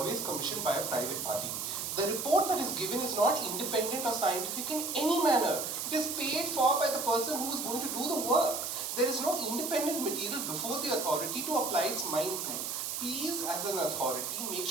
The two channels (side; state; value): right; noise; hiss, 3 dB below the sound